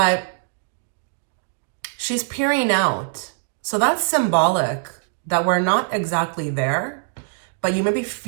she's peering out. So that's symbolic that we're not exactly there, but you may be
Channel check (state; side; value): silent; left; digital silence